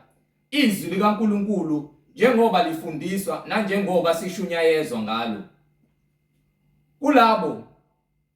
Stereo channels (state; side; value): identical; both; correlation 1.00